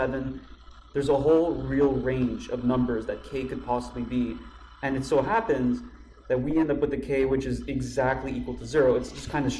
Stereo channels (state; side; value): identical; both; correlation 1.00